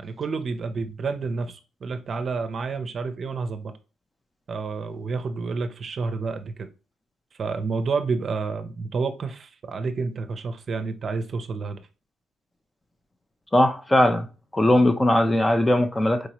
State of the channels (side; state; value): both; normal; correlation 0.90